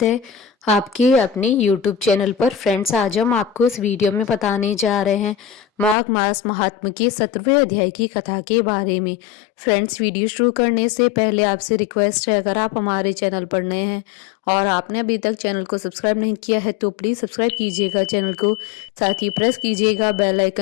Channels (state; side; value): drops out; right; at 6.0 s